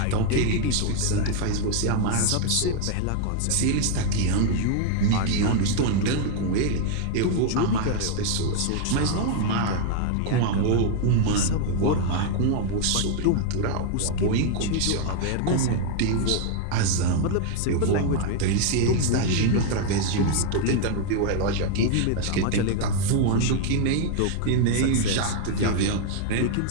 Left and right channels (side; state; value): both; different; correlation 0.00